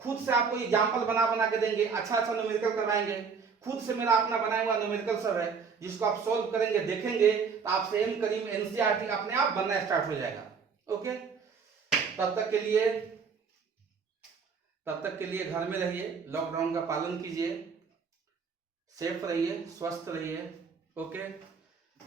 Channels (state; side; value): quieter; left; 5.7 dB